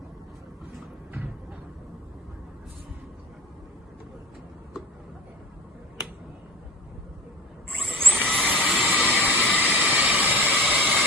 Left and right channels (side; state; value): both; normal; correlation 0.36